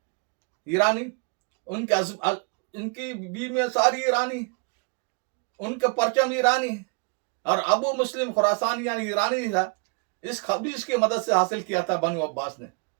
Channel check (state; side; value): quieter; left; 34.1 dB